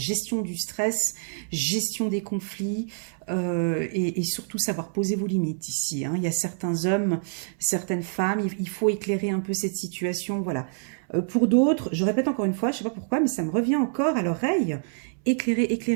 du stress, gestion des conflits, et surtout savoir poser vos limites ici, hein. Il y a certains hommes, certaines femmes, il faut éclairer un peu cette situation, voilà. Pour d'autres, je répète encore une fois, je ne sais pas pourquoi, mais ça me revient encore à l'oreille. Éclairer,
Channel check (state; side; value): silent; left; 61 dB below the other